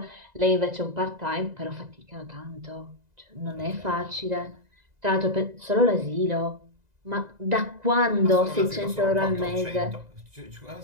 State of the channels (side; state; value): left; late; 2.0 ms